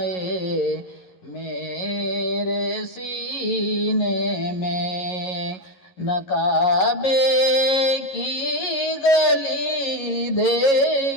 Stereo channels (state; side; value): late; right; 11 ms